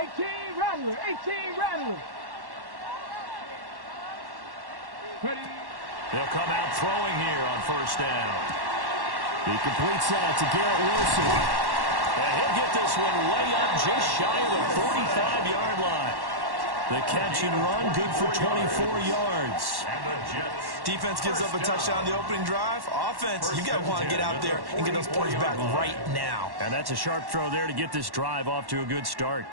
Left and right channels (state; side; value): late; left; 1.1 ms